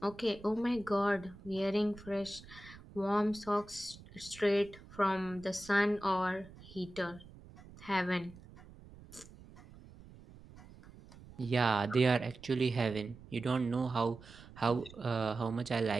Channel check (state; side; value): noise; right; rumble, 20 dB below the sound